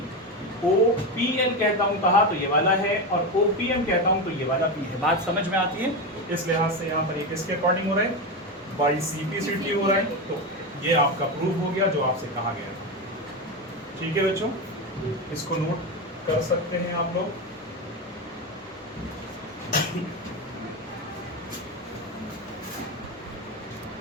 OPL कहता हूँ कहा तो ये वाला है और OPM कहता हूँ तो ये वाला भी है। बात समझ में आती है? इस लिहाज से यहाँ पर ये किसके अकॉर्डिंग हो रहा है, बाई CP/CT हो रहा है। तो ये आपका प्रूफ हो गया जो आपसे कहा गया था। ठीक है बच्चों, इसको नोट कर सकते हैं आप लोग।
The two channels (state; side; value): normal; both; correlation 0.16